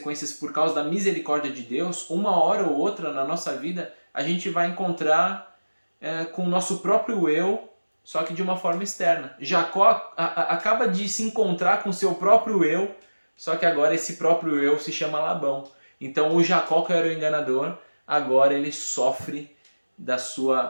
por causa da misericórdia de Deus, uma hora ou outra na nossa vida a gente vai encontrar com o nosso próprio eu só que de uma forma externa. Jacó acaba de se encontrar com seu próprio eu, só que agora esse próprio eu se chama Labão. Então o Jacó, que era o enganador, agora ele sofre da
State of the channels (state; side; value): inverted; both; correlation -1.00